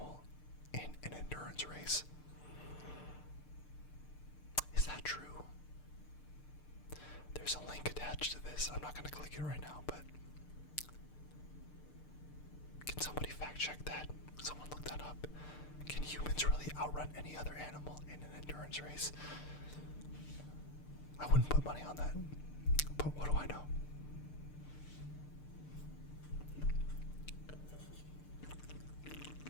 in an endurance race. Is that true? There's a link attached to this. I'm not going to click it right now, but can somebody fact check that? Someone look that up. Can humans really outrun any other animal in an endurance race? I wouldn't put money on that, but what do I know?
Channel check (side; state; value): right; late; 6.7 ms